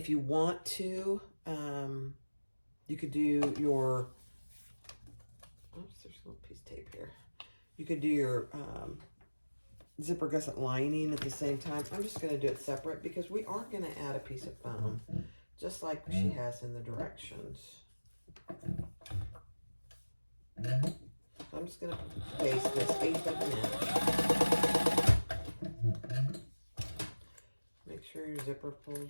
you want to, you could do your, oops, there's a little piece of tape here. You could do your zipper gusset lining at the same time. I'm just going to do it separate because we are going to add a piece of foam, just like she has in the directions. So I'm just going to baste this 1/8 of an inch. Make sure your zipper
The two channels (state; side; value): inverted; both; correlation -1.00